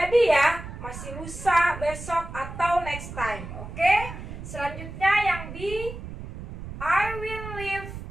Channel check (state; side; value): noise; right; rumble, 10 dB below the sound